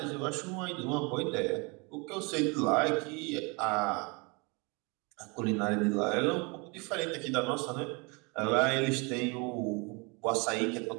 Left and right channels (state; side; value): quieter; left; 29.9 dB